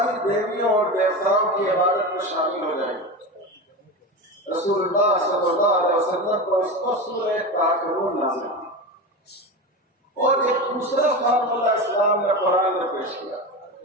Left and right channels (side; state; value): both; normal; correlation 0.23